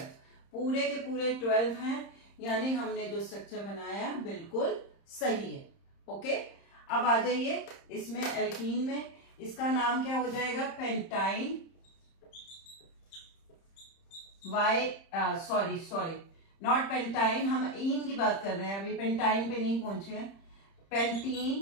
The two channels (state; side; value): late; right; 30 ms